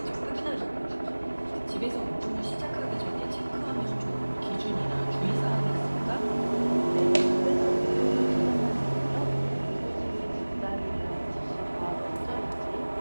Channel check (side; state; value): both; inverted; correlation -1.00